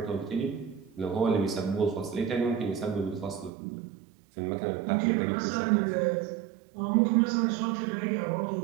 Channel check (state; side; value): drops out; left; at 3.5 s